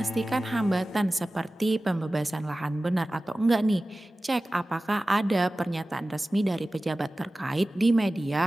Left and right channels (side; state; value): both; normal; correlation 0.96